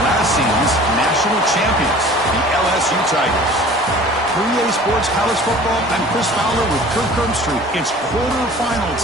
last season's national champions, the LSU Tigers. For EA Sports College Football, I'm Chris Fowler with Kirk Herbstreit. It's quarterfinal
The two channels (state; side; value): normal; both; correlation 0.46